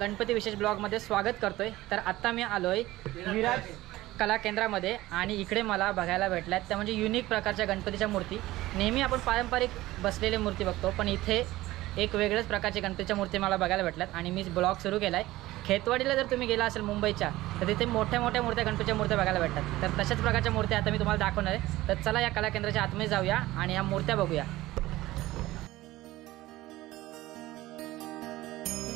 गणपती विशेष ब्लॉगमध्ये स्वागत करतोय। तर आता मी आलोय विराज कला केंद्रामध्ये आणि इकडे मला बघायला भेटल्यात त्या म्हणजे युनिक प्रकारच्या गणपतीच्या मूर्ती। नेहमी आपण पारंपरिक बसलेले मूर्ती बघतो, पण इथे एक वेगळ्याच प्रकारची गणपतीच्या मूर्ती मला बघायला भेटल्यात आणि मी ब्लॉग सुरू केलाय। खेतवाडीला जर तुम्ही गेला असेल मुंबईच्या तर तिथे मोठ्या मोठ्या मूर्त्या गणपतीच्या मूर्त्या बघायला भेटतात। तर तशाच प्रकारच्या मूर्त्या आता मी तुम्हाला दाखवणार आहे। तर चला या कला केंद्राच्या आतमध्ये जाऊया आणि या मूर्त्या बघूया।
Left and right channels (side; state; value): left; quieter; 17.3 dB